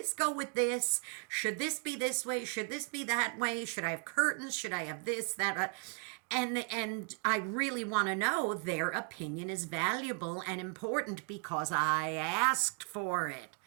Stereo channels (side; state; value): left; quieter; 37.9 dB